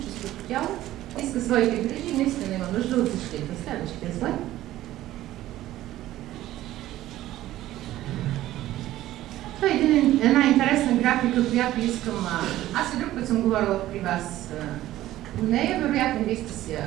тяло иска своите грижи и наистина има нужда от защита. Следващия слайд. Това е една интересна графика, която искам... Аз и друг път съм говорила при вас по нея, вероятно вие сте си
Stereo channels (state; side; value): quieter; left; 14.6 dB